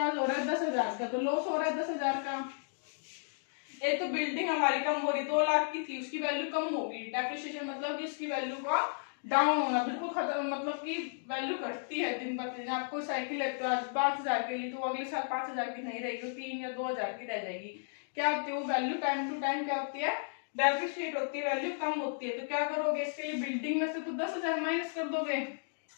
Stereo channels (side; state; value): right; silent; digital silence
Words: हो रहा है 10,000 का, तो लॉस हो रहा है 10,000 का। एक तो बिल्डिंग हमारी कम हो रही, 2 लाख की थी, उसकी वैल्यू कम होगी, डेप्रिसिएशन मतलब कि इसकी वैल्यू का डाउन होना, बिल्कुल खत्म, मतलब कि वैल्यू घटती है दिन ब दिन। आपको साइकिल है तो आज 5,000 के लिए, तो अगले साल 5,000 की नहीं रहेगी, 3 या 2,000 की रह जाएगी। क्या होती है वो वैल्यू, टाइम टू टाइम क्या होती है, डेप्रिशिएट होती है, वैल्यू कम होती है। तो क्या करोगे, इसके लिए बिल्डिंग में से तो 10,000 माइनस कर दोगे,